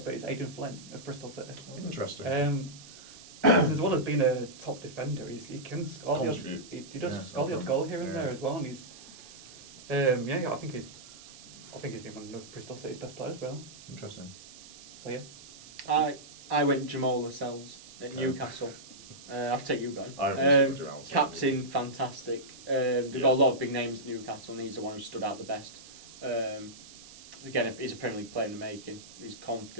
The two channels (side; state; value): right; noise; hiss, 18 dB below the sound